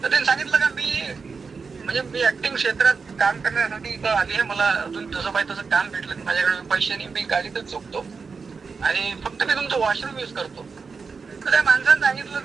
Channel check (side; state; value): left; quieter; 5.0 dB